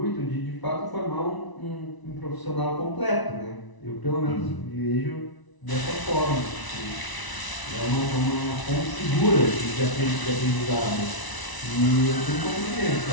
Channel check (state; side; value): late; right; 1.0 ms